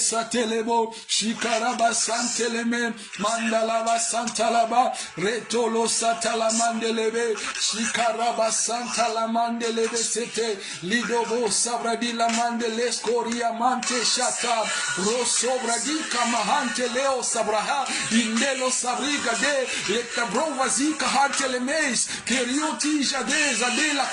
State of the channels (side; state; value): both; identical; correlation 1.00